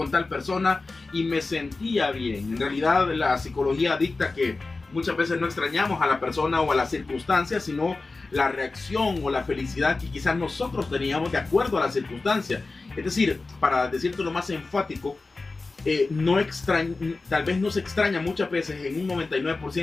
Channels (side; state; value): right; quieter; 3.6 dB